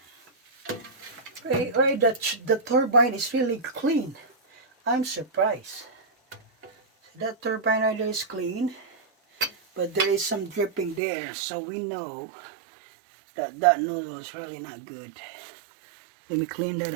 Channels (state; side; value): drops out; left; at 11.0 s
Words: Right, the turbine is really clean. I'm surprised. That turbine right there is clean, but there is some dripping there, so we know that that nozzle is really not good. Let me clean that